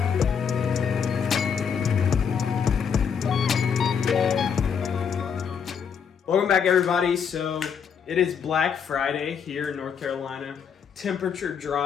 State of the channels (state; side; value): quieter; right; 7.0 dB